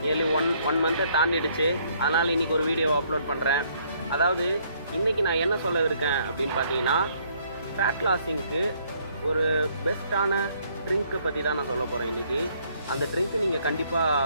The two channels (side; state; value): both; inverted; correlation -0.66